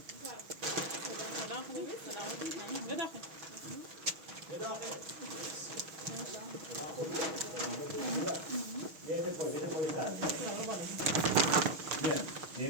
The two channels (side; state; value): left; late; 6.3 ms